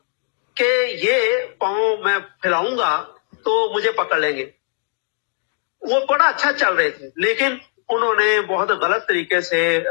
कि ये पांव मैं फैलाऊंगा तो मुझे पकड़ लेंगे। वो बड़ा अच्छा चल रहे थे, लेकिन उन्होंने बहुत गलत तरीके से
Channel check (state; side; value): silent; right; digital silence